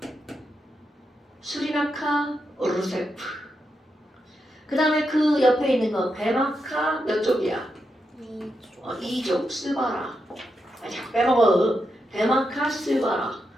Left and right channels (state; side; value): normal; both; correlation 0.85